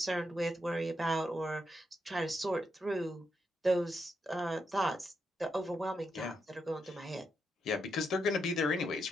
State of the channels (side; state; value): both; normal; correlation 0.82